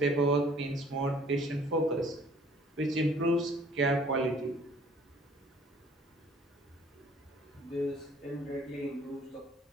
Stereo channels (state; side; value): normal; both; correlation 0.56